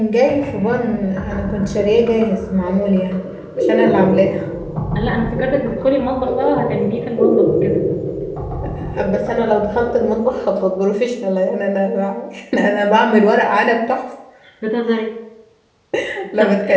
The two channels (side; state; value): both; identical; correlation 1.00